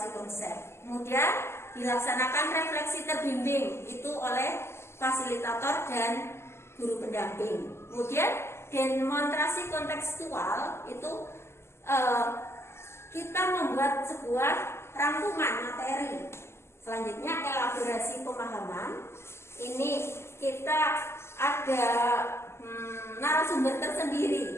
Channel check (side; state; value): right; late; 0.12 ms